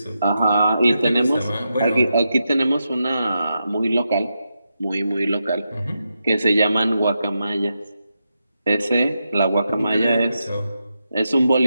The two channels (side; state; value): both; inverted; correlation -0.87